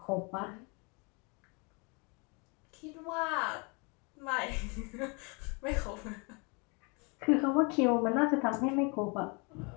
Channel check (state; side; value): quieter; right; 31.4 dB